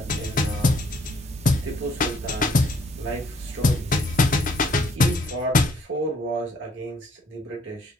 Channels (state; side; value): normal; both; correlation 0.64